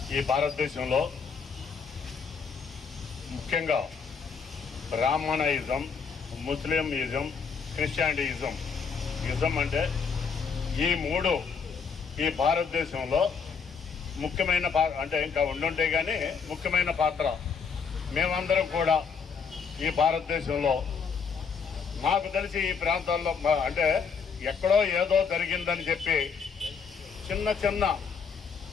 ఈ భారతదేశంలో ముఖ్యంగా బ్రాహ్మణయిజం, ముస్లింయిజం, క్రిస్టియానిటిజం అంటే ఈ మూడు ఈ భారతదేశంలో ముఖ్యమైన అంటే ఇంకా ఉండుంటే కానీ ముఖ్యమైన పాత్ర. మేమందరం కూడా ఈ భారతదేశంలో మాకు తెలిసి ఈ ప్రాంతాల్లో అంటే ఎక్కడో ఏదో జరిగిందని చెప్పి చిన్న చిన్న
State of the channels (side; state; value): right; quieter; 5.8 dB